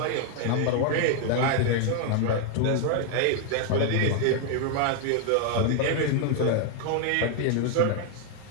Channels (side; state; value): both; different; correlation 0.00